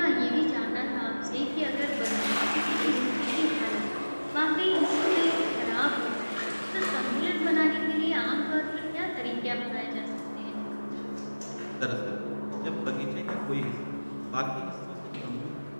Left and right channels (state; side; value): inverted; both; correlation -1.00